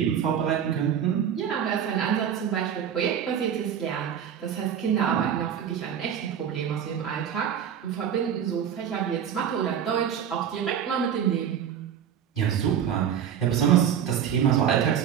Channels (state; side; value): quieter; left; 8.8 dB